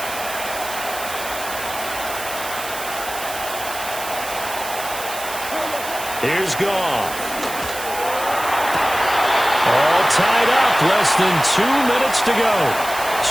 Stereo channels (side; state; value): right; noise; hiss, 10 dB below the sound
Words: Here's Goff. All tied up. Less than 2 minutes to go.